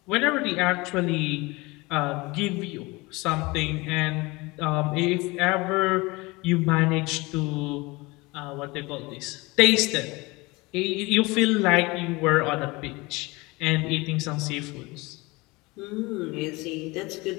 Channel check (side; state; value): right; quieter; 23.7 dB